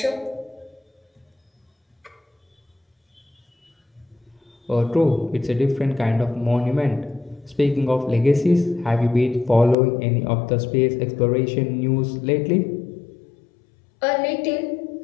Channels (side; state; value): right; drops out; at 9.8 s